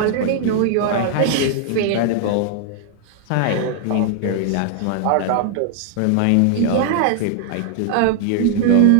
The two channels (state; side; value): different; both; correlation -0.01